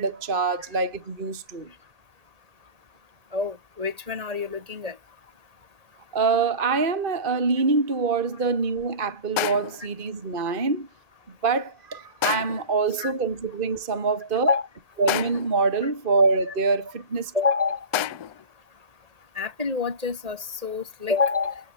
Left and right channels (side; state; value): left; late; 1.8 ms